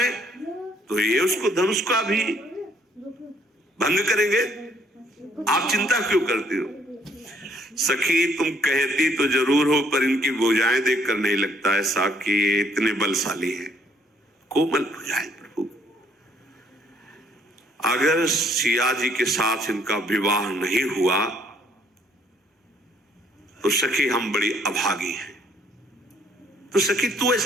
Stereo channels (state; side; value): normal; both; correlation 0.65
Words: तो ये उसको धनुष का भी भंग करेंगे, आप चिंता क्यों करती हो? सखी तुम कहती तो जरूर हो, पर इनकी भुजाएं देखकर नहीं लगता ऐसा कि ये इतने बलशाली हैं। कोमल भुजाएं प्रभु। अगर सिया जी के साथ इनका विवाह नहीं हुआ तो सखी हम बड़ी अभागी हैं। तो सखी तू